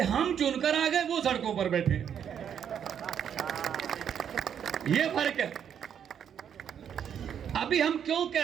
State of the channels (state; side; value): quieter; left; 8.5 dB